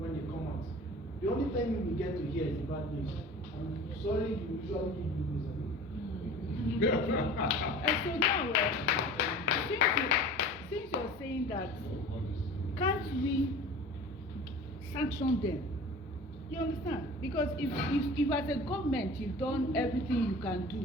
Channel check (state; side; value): normal; both; correlation 0.40